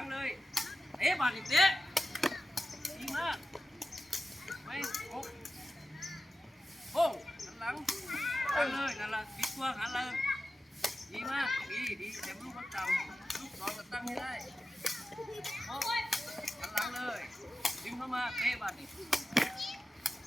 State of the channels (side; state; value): both; normal; correlation 0.93